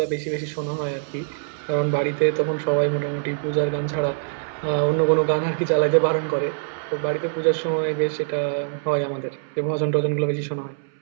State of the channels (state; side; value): silent; left; 63 dB below the other